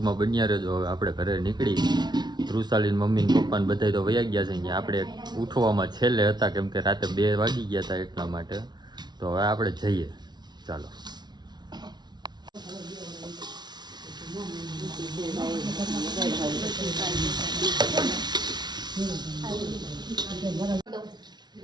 બન્યા રહેજો. હવે આપણે ઘરે નીકળી, વૃષાલીન મમ્મી ને પપ્પાને બધા તો વયા ગયા છે. અહીંયા આપણે ઉઠવામાં છેલ્લે હતા કેમ કે રાતે 2 વાગી ગયા હતા એટલા માટે. તો હવે આપણે જઈએ, ચાલો.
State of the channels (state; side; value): late; left; 0.20 ms